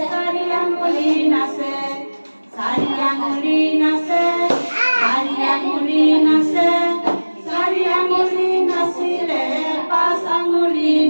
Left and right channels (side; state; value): both; inverted; correlation -1.00